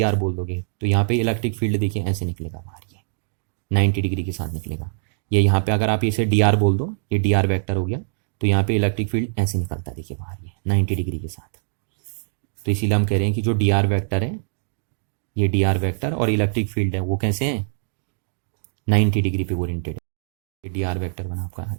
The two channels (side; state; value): left; silent; digital silence